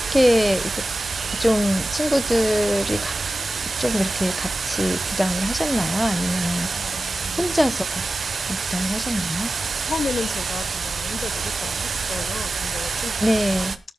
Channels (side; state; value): both; normal; correlation 0.94